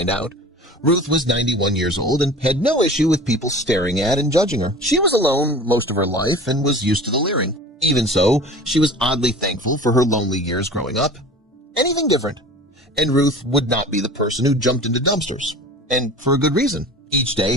out. Ruth was 91 years old and had no issue with people staring at and judging her. She was alone most of her life and was used to the leering. Even so, she was oddly thankful for her lonely years growing up. Anything different. And Ruth would not be the person who jumped into dumpsters. And for a good reason. Each day,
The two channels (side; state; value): both; normal; correlation 0.40